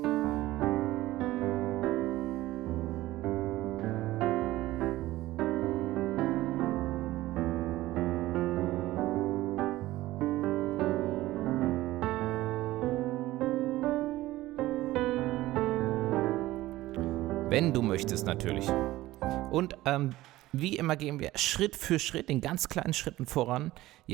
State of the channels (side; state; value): left; quieter; 16.9 dB